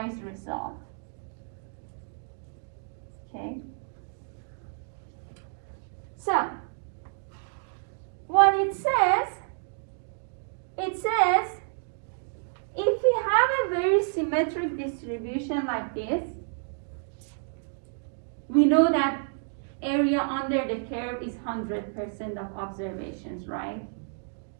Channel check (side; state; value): left; silent; digital silence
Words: result. Okay? So, what it says, if we have a very similar symmetric distribution like this, we know that area under the curve is 100% of observations, right?